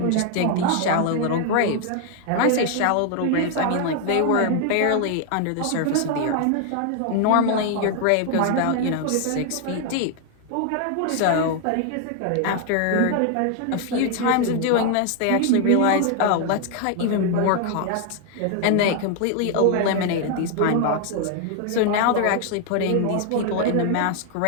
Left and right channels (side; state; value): both; different; correlation 0.00